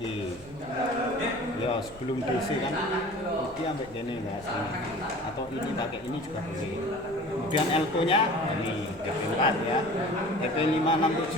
ya sebelum DC kan ini sampai gini enggak sini, atau ini pakai ini juga boleh. Kemudian L2 nya ini TP4 ya,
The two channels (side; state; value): right; noise; hum, 25 dB below the sound